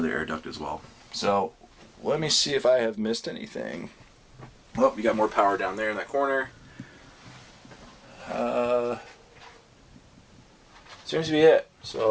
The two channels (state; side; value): identical; both; correlation 1.00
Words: air duct as well. So let me see if I have missed anything. Oh, you got more power down there in that corner. Seems to be it.